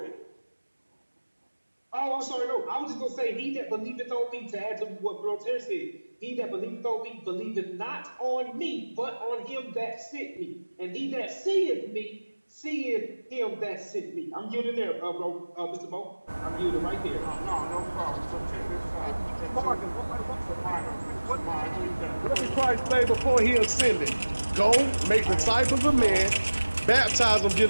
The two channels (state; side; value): inverted; both; correlation -1.00